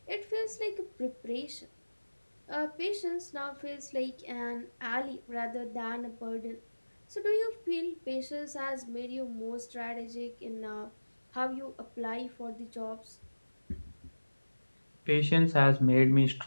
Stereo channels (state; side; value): inverted; both; correlation -1.00